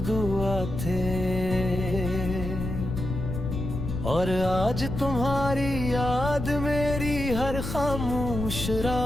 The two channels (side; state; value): left; noise; rumble, 5 dB below the sound